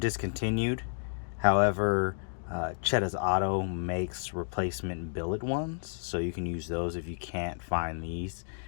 However, Chedda's Auto makes replacement billet ones, so you can use those if you can't find these.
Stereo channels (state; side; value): silent; right; digital silence